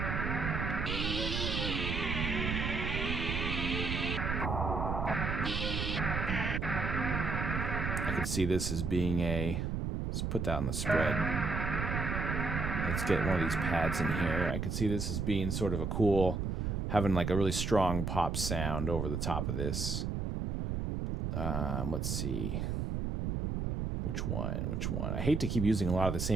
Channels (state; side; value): noise; right; rumble, 1 dB below the sound